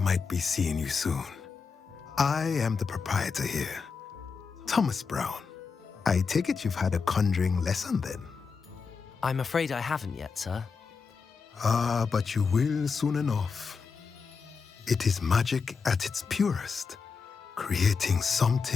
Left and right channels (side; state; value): right; quieter; 5.3 dB